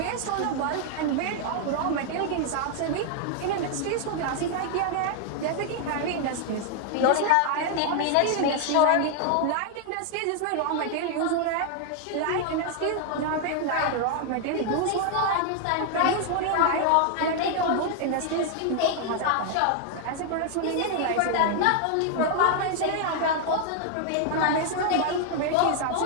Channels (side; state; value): both; different; correlation 0.00